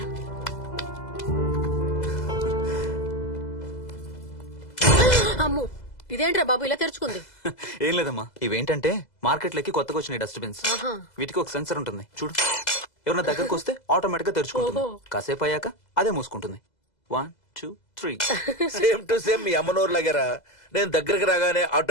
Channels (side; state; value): right; late; 2.0 ms